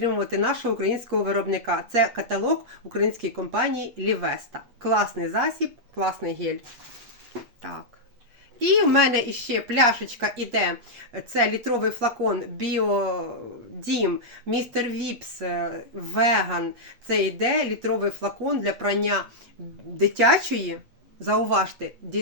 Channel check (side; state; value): left; late; 8.4 ms